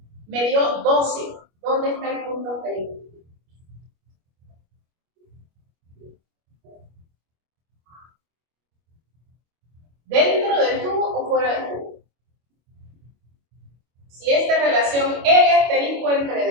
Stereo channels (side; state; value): left; late; 25 ms